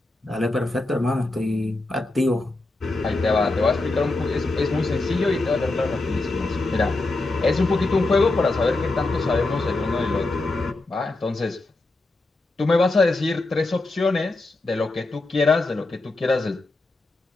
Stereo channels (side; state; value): right; quieter; 3.0 dB